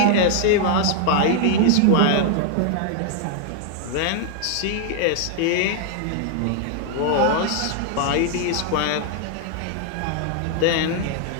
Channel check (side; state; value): both; different; correlation 0.00